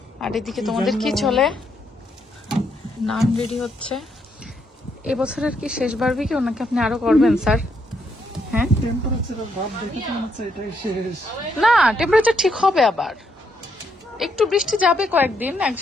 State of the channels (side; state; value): both; normal; correlation 0.76